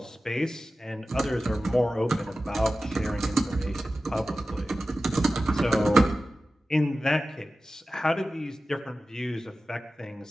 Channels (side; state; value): both; normal; correlation 0.94